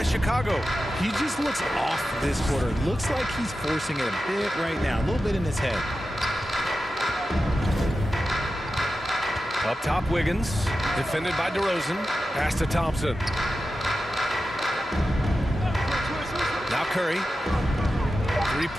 Chicago. He just looks off this quarter. Looks like he's forcing it a bit right now. A little bit in his head. Up top, Wiggins. Defended by DeRozan. Pass to Thompson. Now Curry.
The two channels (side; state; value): both; normal; correlation 0.92